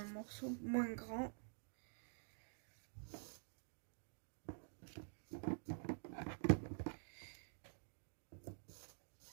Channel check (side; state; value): left; silent; digital silence